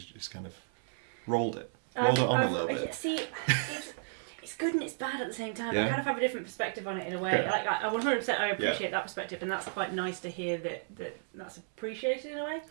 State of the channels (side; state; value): left; silent; 56 dB below the other